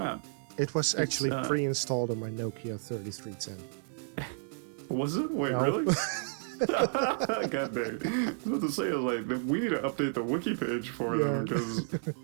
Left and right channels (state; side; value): silent; left; 57 dB below the other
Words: It was actually pre-installed on my Nokia 3310. Was it? Wait, no. Really? God dang. I was about to say, like, we need to update the wiki page for them, because